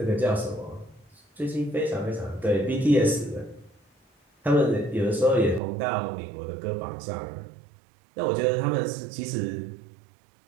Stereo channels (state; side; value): drops out; left; at 5.6 s